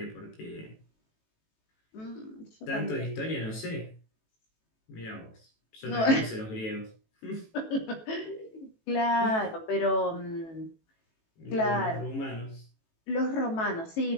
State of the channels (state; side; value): late; right; 18 ms